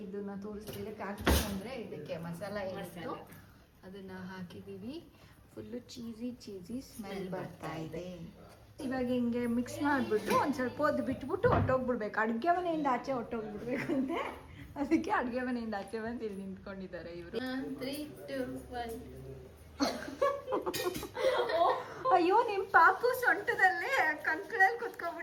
ತೋರಿಸ್ತಿದ್ದೆ. ಖಾರದ ಪುಡಿ ಅಂದರೆ ಇದಕ್ಕೆ ಮಸಾಲ ಏನಿತ್ತು ಅದನ್ನು ಹಾಕಿದ್ದೀವಿ. ಫುಲ್ಲು ಚೀಸಿ ಸ್ಮೆಲ್ ಬರ್ತಾ ಇದೆ. ಇವಾಗ ಹಿಂಗೆ ಮಿಕ್ಸ್ ಮಾಡಿಬಿಟ್ಟು ಒಂದು ಸ್ವಲ್ಪ ಹೊತ್ತು ಬಿಟ್ಬಿಟ್ಟು ಹೊಟ್ಟೋಗ್ಬಿಡ್ಬೇಕು. ಅಡುಗೆ ಮನೆಯಿಂದ ಆಚೆ ಹೊಟ್ಟೋಗ್ಬಿಡ್ಬೇಕಂತೆ, ಅದಕ್ಕೆ ಅಡುಗೆ ಮನೆಯಿಂದ ಆಚೆ ಬಂದು ಇಲ್ಲಿ ನಿಂತ್ಕೊಂಡಿದ್ದಾರೆ ಇವರು. 3, 2, 1. ಅಯ್ಯೋ, ನಿಮ್ಮ ಪಾಪು ಸೊಂಟದಲ್ಲೇ ಕಂಕಳಲ್ಲಿ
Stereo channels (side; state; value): both; identical; correlation 1.00